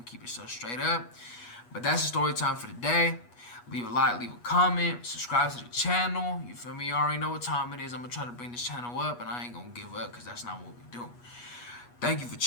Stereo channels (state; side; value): late; right; 8.3 ms